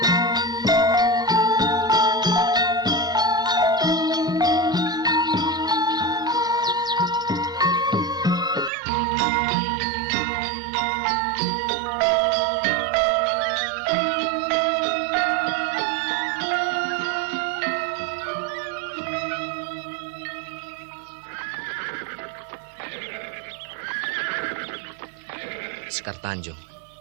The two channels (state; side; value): drops out; left; at 8.7 s